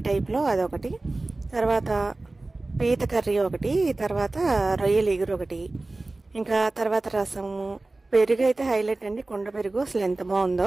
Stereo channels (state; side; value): quieter; left; 3.1 dB